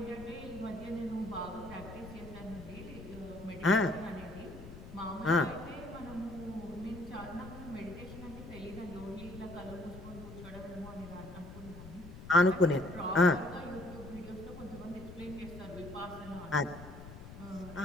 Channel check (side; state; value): left; noise; rumble, 13 dB below the sound